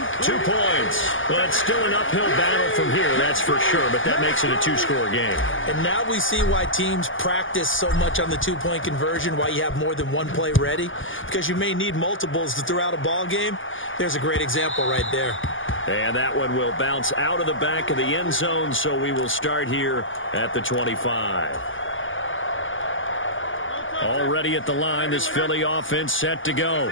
2 points. But still an uphill battle from here, that's for sure. But that makes it a 2-score game. And now we see why teams practice so much on the 2-point conversion, why you have more than 1 play ready. Because you may need multiples to throw out a ball game. There's a great example right there. And that one will bounce out of the back of the end zone, so we will start here at the 25. Already at the line, this Philly offense set to go.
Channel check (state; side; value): late; right; 0.58 ms